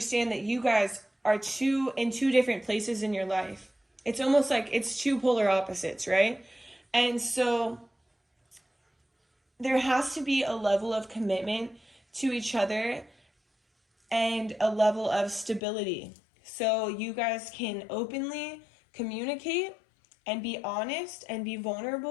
that you guys are in two different places in your life. It's almost like it's two polar opposites, right? And so there has to be a level of commitment to each other and a level of stability. So you guys can openly communicate and be honest and be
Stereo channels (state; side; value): drops out; right; at 15.6 s